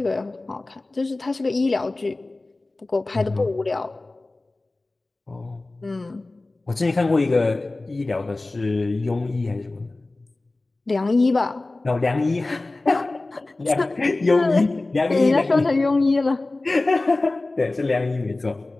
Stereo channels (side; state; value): right; quieter; 3.0 dB